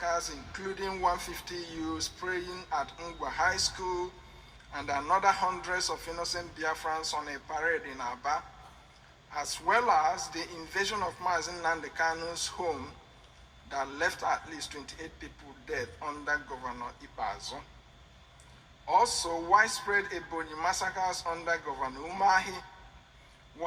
including 150 youths praying at Ngwa High School and another hundreds of innocent Biafrans on a parade in Aba, as well as the invasion of Mazin Nnamdi Kanu's home that left at least 28 people dead under Governor Ipazo. Also, widespread Ebonyi massacres under Governor Umahi,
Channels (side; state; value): both; identical; correlation 1.00